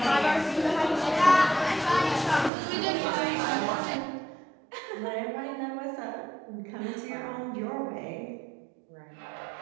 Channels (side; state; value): left; drops out; at 2.5 s